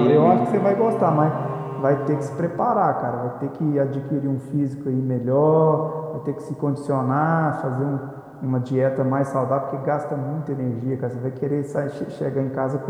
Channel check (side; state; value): both; identical; correlation 1.00